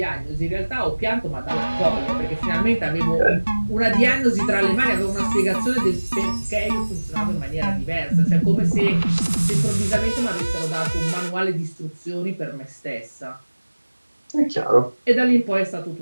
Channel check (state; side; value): inverted; both; correlation -1.00